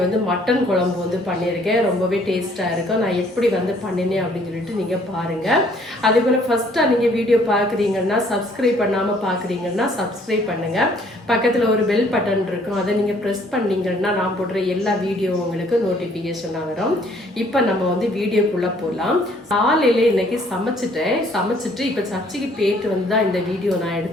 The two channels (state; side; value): normal; both; correlation 0.61